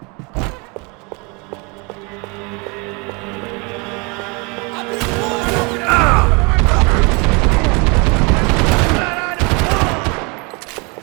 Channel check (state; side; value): quieter; left; 30.0 dB